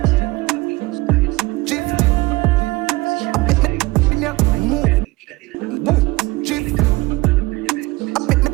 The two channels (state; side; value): quieter; left; 21.6 dB